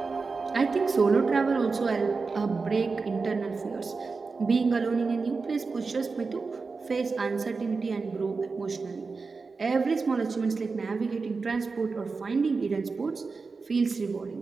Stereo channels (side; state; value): left; quieter; 4.4 dB